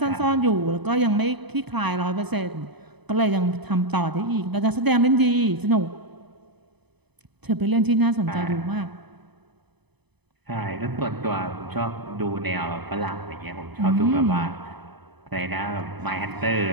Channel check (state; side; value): late; left; 0.99 ms